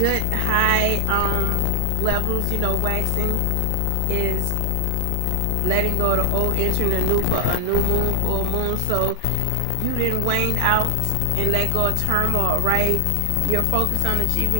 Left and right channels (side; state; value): both; different; correlation 0.00